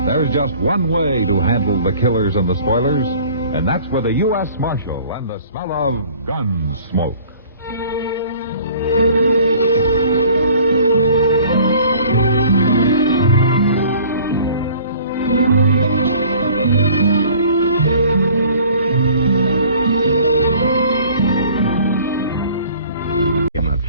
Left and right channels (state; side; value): inverted; both; correlation -0.51